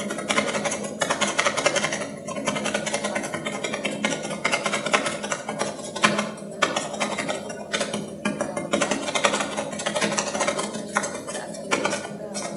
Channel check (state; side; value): identical; both; correlation 1.00